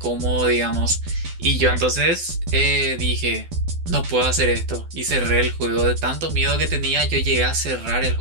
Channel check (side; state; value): left; late; 12 ms